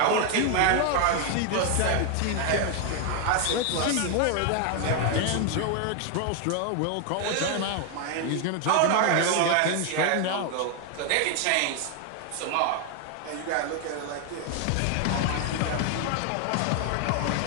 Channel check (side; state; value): both; different; correlation 0.01